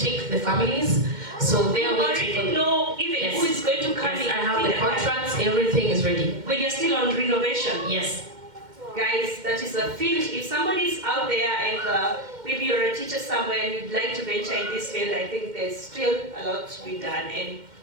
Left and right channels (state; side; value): late; left; 2.1 ms